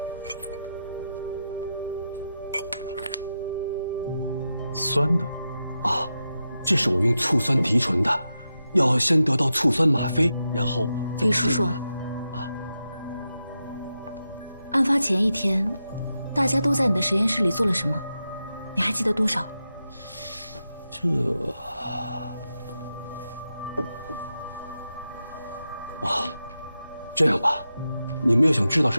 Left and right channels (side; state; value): both; inverted; correlation -0.89